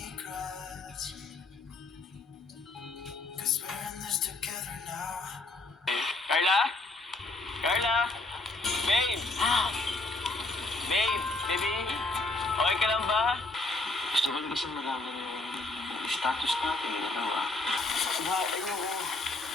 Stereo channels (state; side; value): quieter; right; 3.1 dB